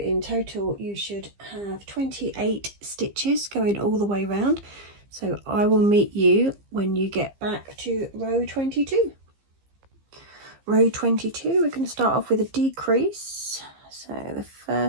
total you should have 28 stitches going all the way around. So I will meet you when you get back to row 22. Row 22, we're going to start off with a decrease. So the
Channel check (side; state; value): left; late; 15 ms